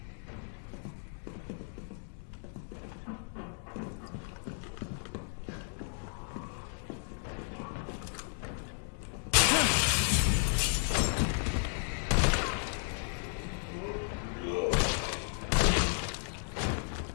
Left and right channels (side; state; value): right; silent; 55 dB below the other